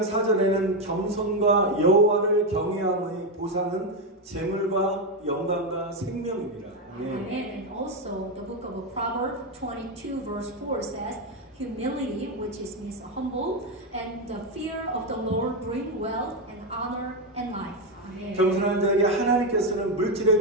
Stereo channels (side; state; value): both; normal; correlation 0.07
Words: 4절에는 겸손과 여호와를 경외함의 보상은 재물과 영광과 생명입니다. Amen. And also, the book of Proverbs 22 verse 4 says, "Humility, which means humble, and the fear of the Lord bring wealth and honor and life." Amen. 겸손한 자에게 하나님께서는